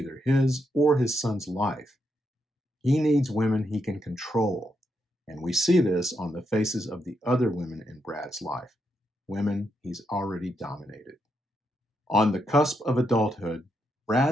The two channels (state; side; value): normal; both; correlation 0.81